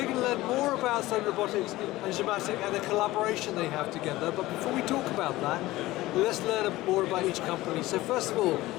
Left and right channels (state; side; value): quieter; right; 17.8 dB